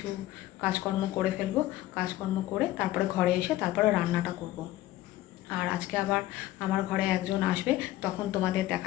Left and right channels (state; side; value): quieter; right; 15.5 dB